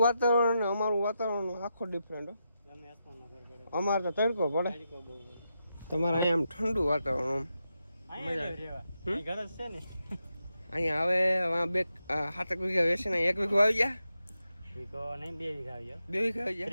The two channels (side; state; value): both; inverted; correlation -0.86